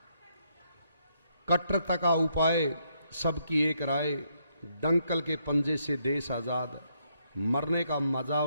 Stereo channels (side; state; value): both; inverted; correlation -0.75